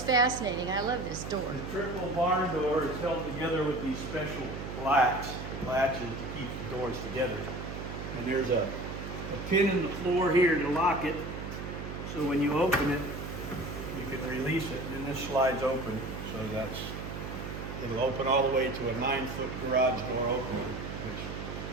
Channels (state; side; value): noise; right; hum, 7 dB below the sound